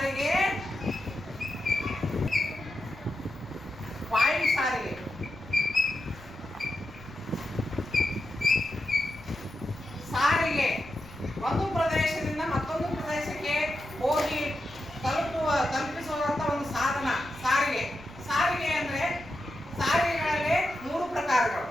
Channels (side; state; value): left; noise; rumble, 20 dB below the sound